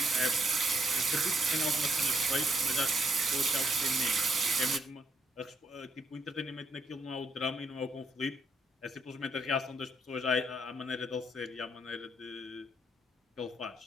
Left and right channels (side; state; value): both; normal; correlation 0.72